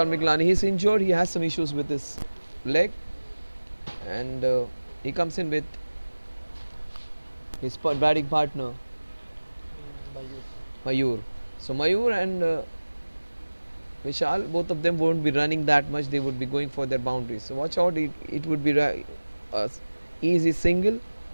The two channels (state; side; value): inverted; both; correlation -1.00